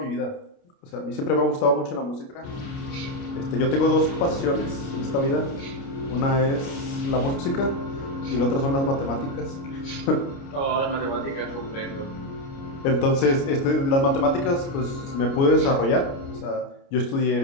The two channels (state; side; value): late; right; 29 ms